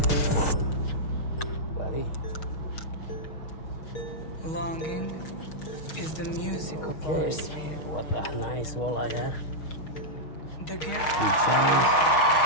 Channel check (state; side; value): late; right; 6.4 ms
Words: Longing is the music of Okay, our sphere. what a nice walleye, huh? The gift Good size.